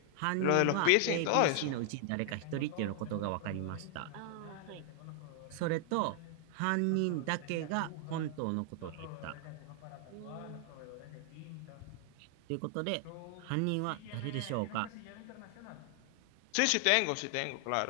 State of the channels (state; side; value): different; both; correlation 0.00